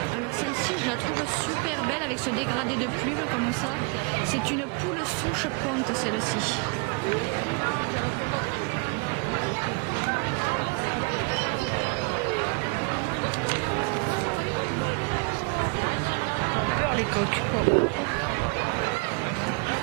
Alors celle-ci, je la trouve super belle avec ce dégradé de plumes comme ça. C'est une poule souche ponte celle-ci. Les coques.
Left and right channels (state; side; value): quieter; left; 32.2 dB